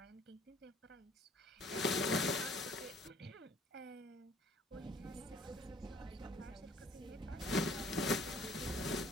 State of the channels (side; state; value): both; normal; correlation 0.56